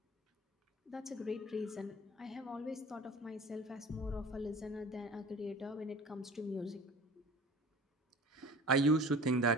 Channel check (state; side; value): normal; both; correlation 0.41